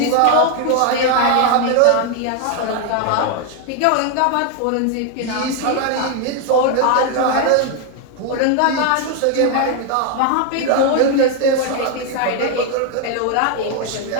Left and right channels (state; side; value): different; both; correlation 0.01